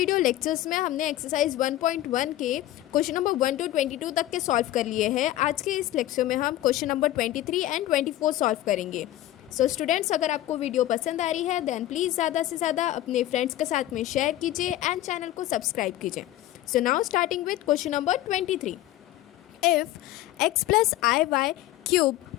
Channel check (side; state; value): right; quieter; 14.6 dB